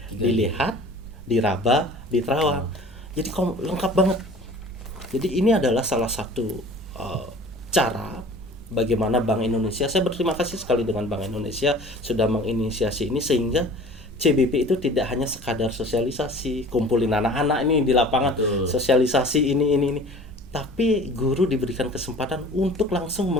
3D. Dilihat, diraba, diterawang. Jadi lengkap banget. Jadi ini adalah salah satu cara bagaimana Bank Indonesia, saya berterima kasih sekali dengan Bank Indonesia sudah menginisiasi ini sehingga CBP itu tidak hanya sekadar sosialisasi, kumpulin anak-anak ini di lapangan, Betul. sosialisasi ini, tapi guru diberikan kesempatan untuk langsung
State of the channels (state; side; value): normal; both; correlation 0.45